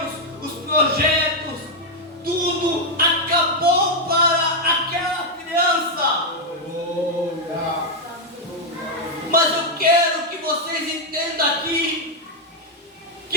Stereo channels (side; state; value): both; normal; correlation 0.00